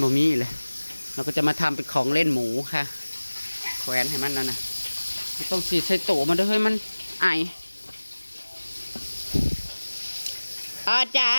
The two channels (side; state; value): both; inverted; correlation -1.00